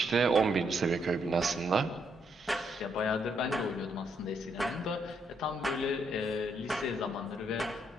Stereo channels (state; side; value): normal; both; correlation 0.75